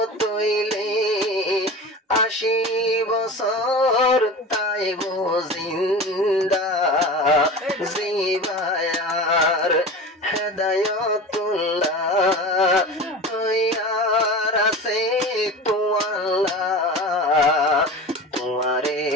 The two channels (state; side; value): normal; both; correlation 0.33